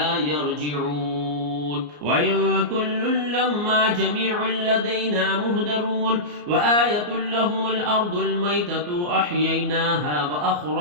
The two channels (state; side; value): late; left; 34 ms